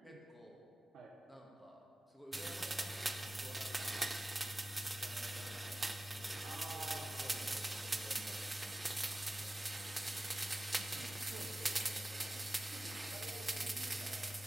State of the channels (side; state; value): both; normal; correlation 0.96